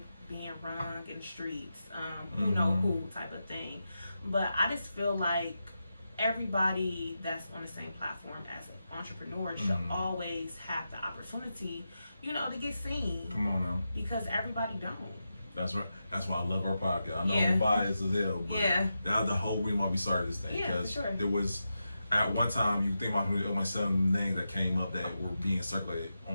being rung in the streets, who know who type of thing. But I just feel like everybody that's on the same platform as an entrepreneur should always have the opportunity, to get seen. Come on now. Because everybody don't. That's right. That's why I love our podcast. I know Yeah. I'm biased as hell, but Yeah. that's the whole reason why we started this thing. Yeah, for Because sure. there was, at one time, you think about my 7 names that came up that were being circulated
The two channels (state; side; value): inverted; both; correlation -0.89